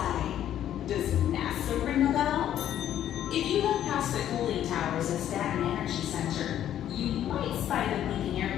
Does NASA ring a bell? If you look past the cooling towers at Staten Energy Center, you might spy the blinking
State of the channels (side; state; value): right; quieter; 11.1 dB